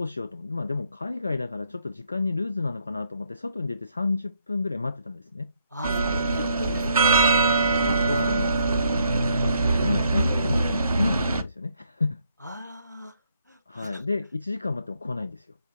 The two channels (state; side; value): inverted; both; correlation -0.73